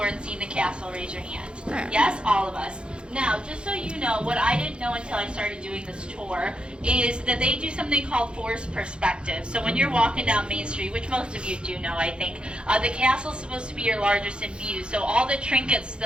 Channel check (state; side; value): late; left; 0.054 ms